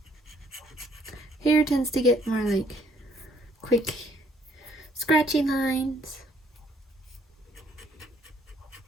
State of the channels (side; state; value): both; normal; correlation 0.66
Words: Hair tends to get more like quick scratchy lines.